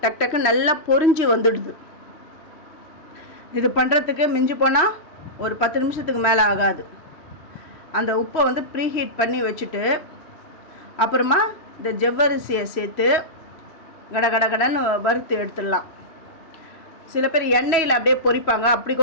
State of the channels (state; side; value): late; right; 3.1 ms